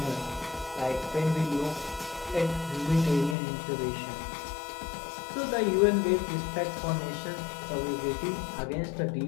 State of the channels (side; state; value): right; drops out; at 3.4 s